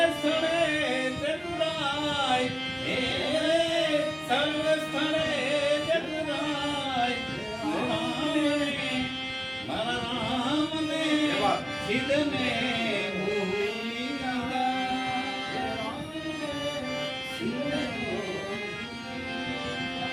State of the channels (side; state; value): both; identical; correlation 1.00